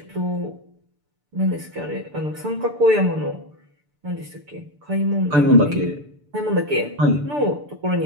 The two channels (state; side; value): late; left; 6.8 ms